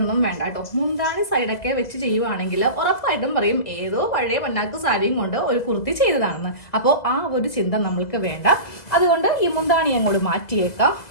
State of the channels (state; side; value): late; right; 2.0 ms